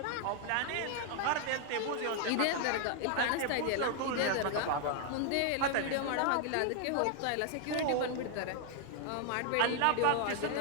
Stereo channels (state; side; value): different; both; correlation 0.00